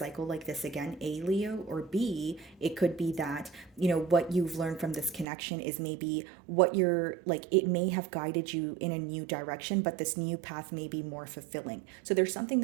like this again, A, Leo, or B, it could be that, what you've learned from this connection is maybe what you're like, it may have guided you in a new direction, but this new path may be more fulfilling. So there's something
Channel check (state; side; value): drops out; left; at 5.2 s